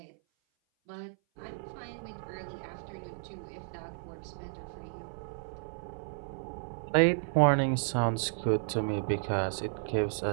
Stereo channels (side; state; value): left; silent; 56 dB below the other